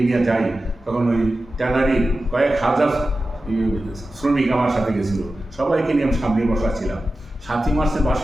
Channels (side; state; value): both; normal; correlation 0.93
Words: নিয়ে যাই, তখন ওই ট্যানারি কয়েক হাজার শ্রমিক আমার সাথে গেছিল, সবাইকে নিয়ে আমি সামনে বসা ছিলাম। 7ই মার্চের